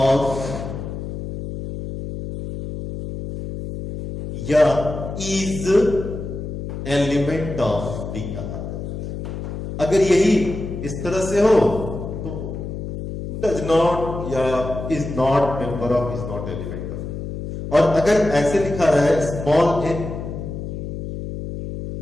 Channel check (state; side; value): noise; left; hum, 7 dB below the sound